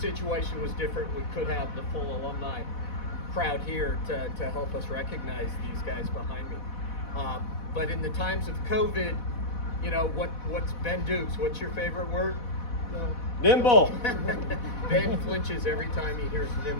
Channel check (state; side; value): late; right; 4.1 ms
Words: situation was different. We could have the full alumni crowd here to help us recognize these guys behind me. But in the times of COVID, you know, what's Ben Dukes? What's your favorite word? Nimble. Ben flinches every time he hears